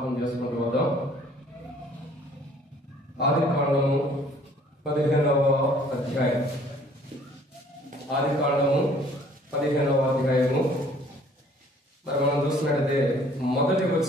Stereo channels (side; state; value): both; normal; correlation 0.56